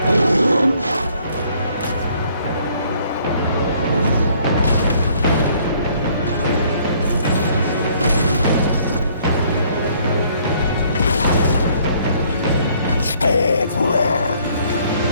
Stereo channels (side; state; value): both; inverted; correlation -0.62